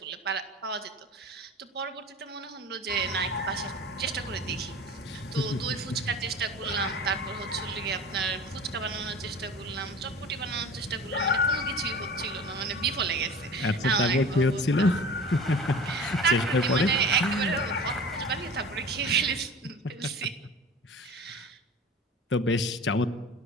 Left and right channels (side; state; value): both; normal; correlation 0.38